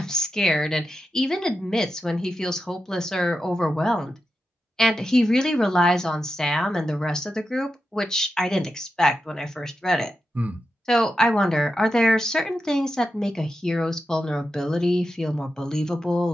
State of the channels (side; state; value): both; normal; correlation 0.89